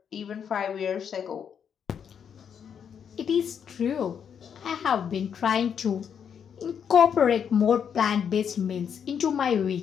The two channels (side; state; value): right; quieter; 7.7 dB